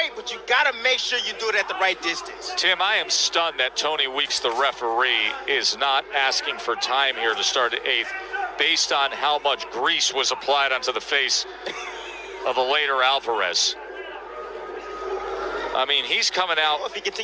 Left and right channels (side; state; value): both; identical; correlation 1.00